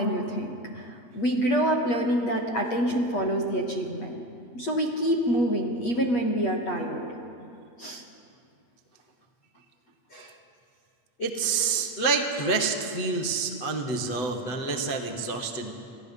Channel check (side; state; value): right; late; 8.0 ms